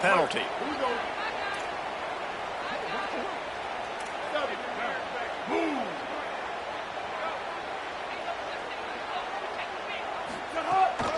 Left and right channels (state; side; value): identical; both; correlation 1.00